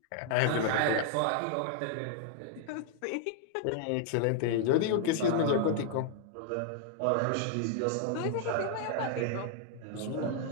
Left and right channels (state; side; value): different; both; correlation 0.00